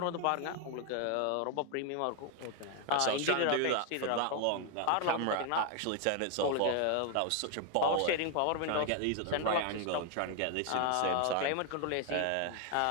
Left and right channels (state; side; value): different; both; correlation 0.01